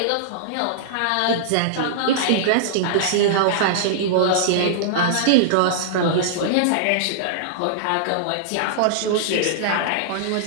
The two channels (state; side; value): different; both; correlation -0.02